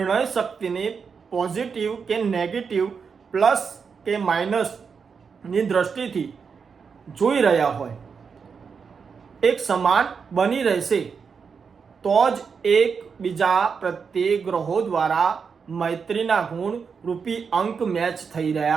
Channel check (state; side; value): quieter; left; 5.9 dB